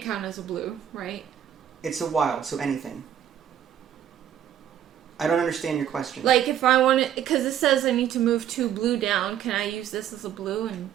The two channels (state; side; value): quieter; left; 10.1 dB